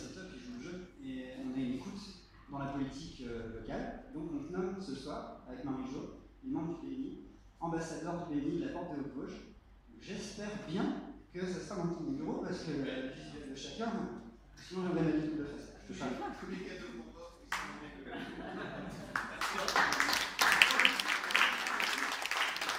top, ils jouent le jeu, et on a une écoute dans la politique locale. Donc on te nomme ce soir, avec Marie-Jo, les membres du BNI, ambassadeurs du BNI de la Porte de Haute-Vosges. J'espère bien que ça sera dans ton bureau parce que le visuel de chacun, sinon j'aurais ma vie de face. Je te parle. Tous les cadeaux qu'on offre,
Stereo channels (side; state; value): both; identical; correlation 1.00